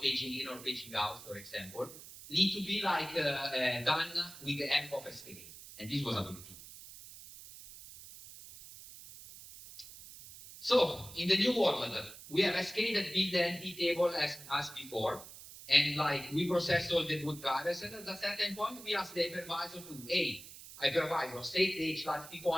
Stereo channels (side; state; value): right; noise; hiss, 16 dB below the sound